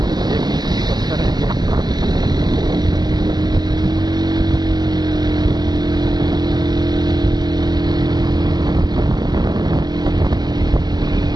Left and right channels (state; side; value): late; left; 0.20 ms